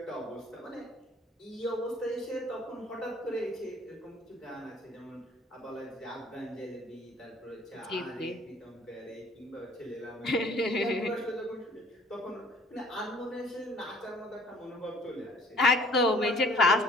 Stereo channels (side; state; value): both; normal; correlation 0.55